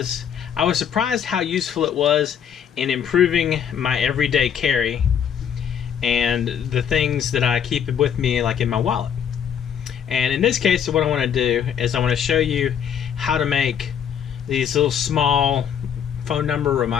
I was surprised how useful it was in improving my everyday carry and the things that I keep with me, like in my wallet. And in this case, what I want to do is I want to show you how to make these little small phone number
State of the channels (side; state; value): right; quieter; 8.4 dB